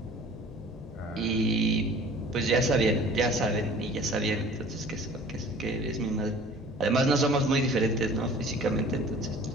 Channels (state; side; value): normal; both; correlation 0.47